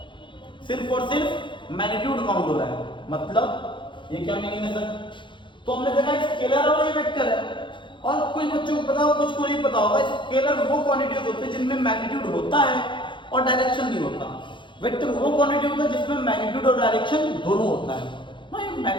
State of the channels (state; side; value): late; right; 0.23 ms